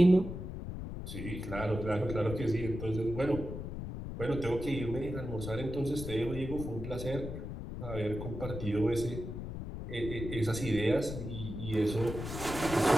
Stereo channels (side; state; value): left; noise; rumble, 7 dB below the sound